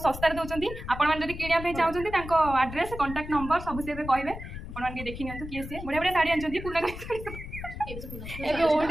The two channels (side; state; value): left; noise; rumble, 10 dB below the sound